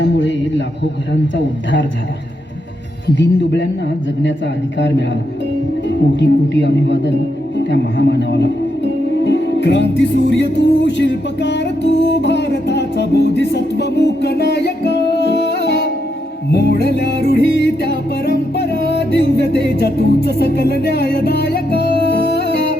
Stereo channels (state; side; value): normal; both; correlation 0.81